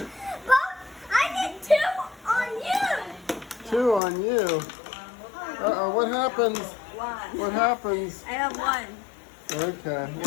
But I did 2 on you. 2 on you. Uh-oh, what happens? 1. What happens? I have 1. Okay,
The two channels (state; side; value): drops out; right; at 4.0 s